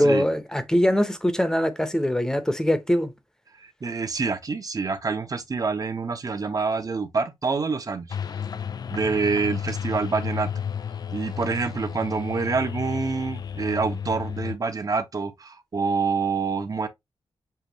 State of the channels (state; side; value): normal; both; correlation 0.76